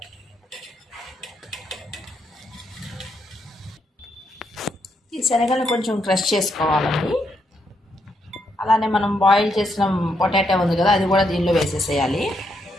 ఈ శనగలను కొంచెం క్రష్ చేసుకోవాలండి. అలానే మనం బాయిల్ చేసిన పొటాటో ఉంది కదా, అది కూడా దీనిలో వేసేసేయాలి.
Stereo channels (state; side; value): normal; both; correlation 0.78